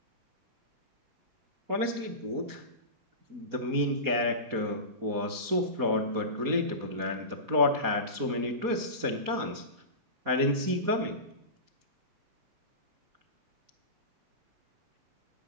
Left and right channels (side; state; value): left; late; 4.2 ms